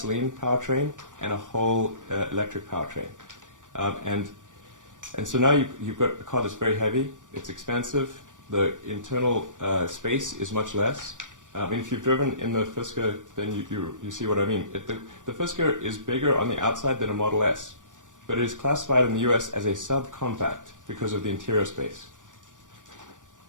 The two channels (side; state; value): left; late; 0.87 ms